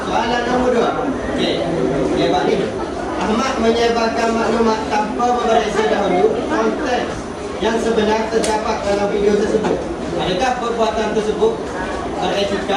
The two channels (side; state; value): both; identical; correlation 1.00